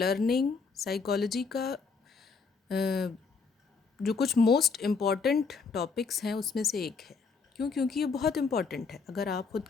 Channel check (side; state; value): right; quieter; 5.0 dB